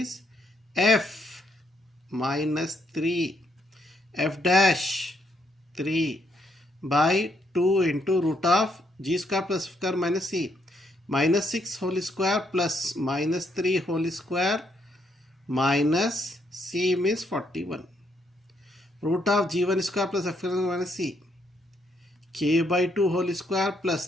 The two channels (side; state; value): both; normal; correlation 0.74